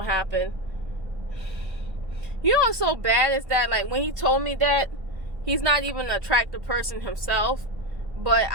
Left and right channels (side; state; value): left; late; 1.6 ms